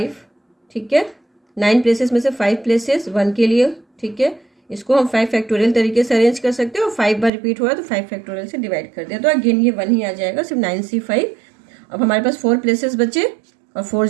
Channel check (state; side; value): drops out; left; at 7.3 s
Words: ठीक है, 9 प्लेसेस में से 5 प्लेसेस 1 के लिए। ठीक है, इसको हम 5 फैक्टोरियल तरीके से अरेंज कर सकते हैं, और 5 बार रिपीट हो रहा है तो 5 फैक्टोरियल से डिवाइड कर दिया, तो अगेन ये 1 ही आ जाएगा, सिर्फ 9C5। अब हमारे पास 4 प्लेसेस बचे और 4